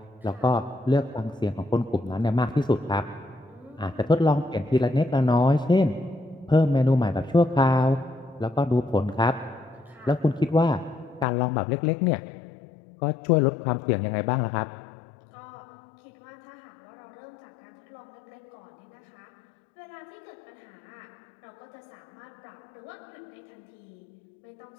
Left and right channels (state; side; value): drops out; right; at 11.2 s